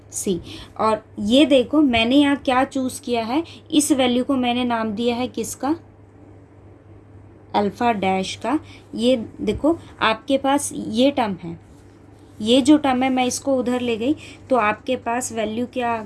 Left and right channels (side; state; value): both; identical; correlation 1.00